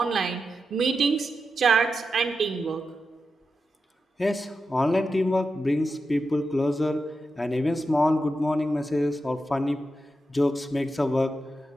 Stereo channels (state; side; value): normal; both; correlation 0.89